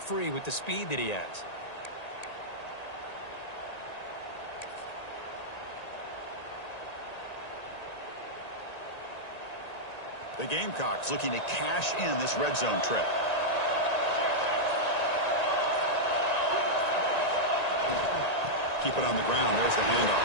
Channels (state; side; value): late; right; 1.9 ms